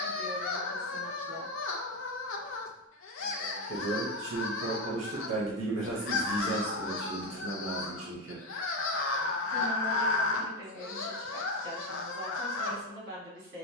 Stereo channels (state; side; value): normal; both; correlation 0.13